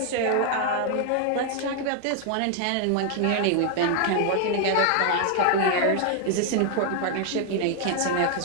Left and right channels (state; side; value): different; both; correlation 0.00